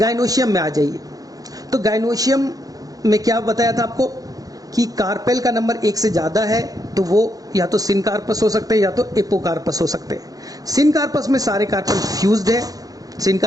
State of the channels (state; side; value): late; left; 0.18 ms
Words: में आ जाइए। तो गाइनोशियम में क्या बताया था आपको कि कार्पेल का नंबर 1 से ज्यादा है तो वो या तो सिनकार्पस हो सकते हैं या तो एपोकार्पस हो सकते हैं। सिनकार्पस में सारे कार्पल फ्यूज्ड है,